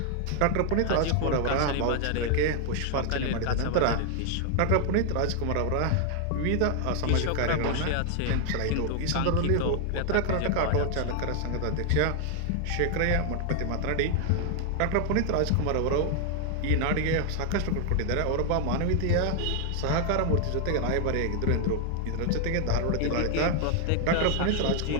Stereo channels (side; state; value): both; different; correlation 0.00